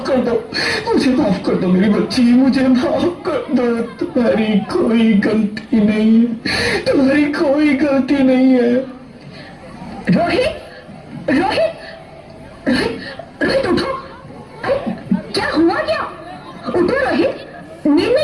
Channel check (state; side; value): identical; both; correlation 1.00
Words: कर दो, मुझे माफ कर दो मेरी बच्ची, मुझे माफ कर दो। तुम्हारी कोई गलती नहीं है, तुम्हारी कोई गलती नहीं है। रोहित, रोहित, रोहित, रोहित उठो। अरे क्या हुआ? क्या? उठो रोहित, नींद